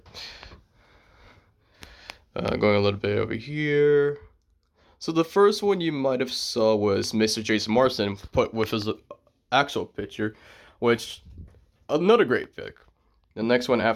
Going a little bit over here. So the first one you might have saw was Mr. Jason Marsden put with his actual picture, which, another great pick. The next one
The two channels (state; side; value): identical; both; correlation 1.00